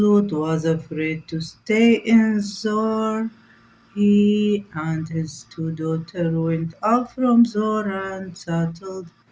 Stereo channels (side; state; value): both; identical; correlation 1.00